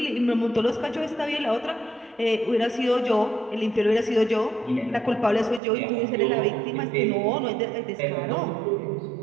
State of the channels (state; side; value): drops out; left; at 5.6 s